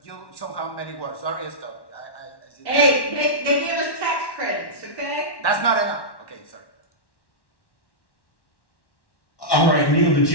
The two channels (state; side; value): late; right; 1.1 ms